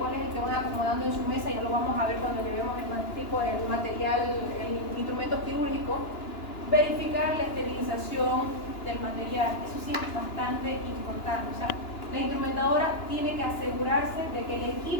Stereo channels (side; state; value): right; late; 2.9 ms